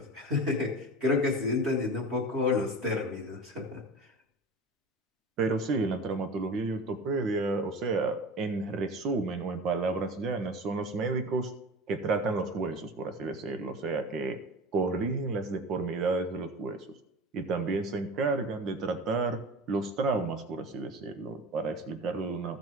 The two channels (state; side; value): normal; both; correlation 0.34